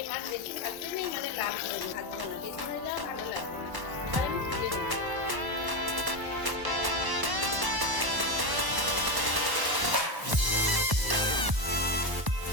মাছ বেশি ভাজতে নেই, মানে লাল করে ভাজবো না, বেশি হয়ে যাওয়া ভালো লাগবে না। এবার আমি তুলে নেব।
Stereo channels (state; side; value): late; left; 1.1 ms